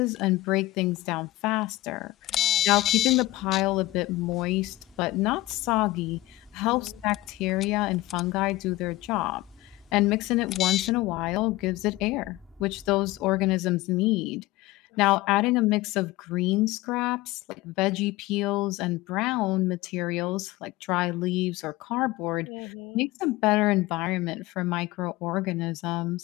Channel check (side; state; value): right; quieter; 18.0 dB